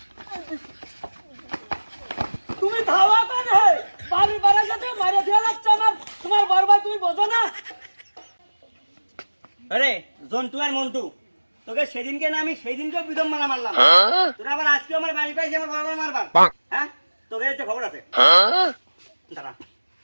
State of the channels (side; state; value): both; inverted; correlation -1.00